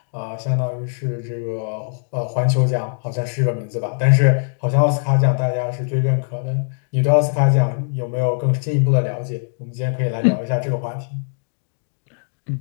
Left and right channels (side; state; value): right; silent; digital silence